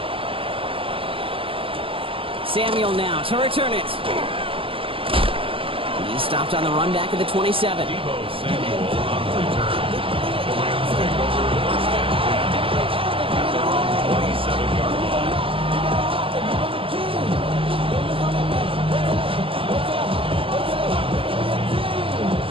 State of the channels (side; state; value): left; late; 0.26 ms